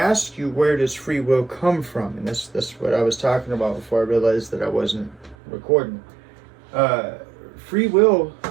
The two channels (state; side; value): drops out; left; at 5.4 s